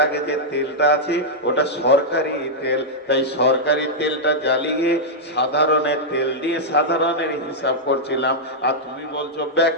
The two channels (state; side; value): normal; both; correlation -0.06